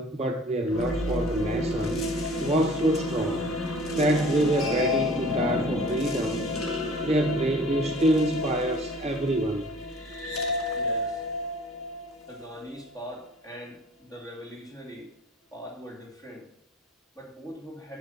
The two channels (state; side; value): normal; both; correlation 0.50